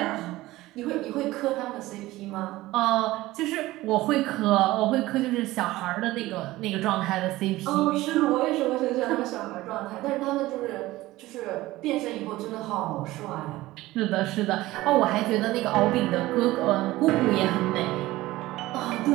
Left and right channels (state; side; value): quieter; left; 17.7 dB